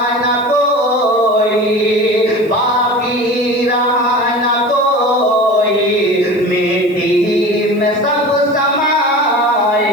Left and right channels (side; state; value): left; noise; hiss, 29 dB below the sound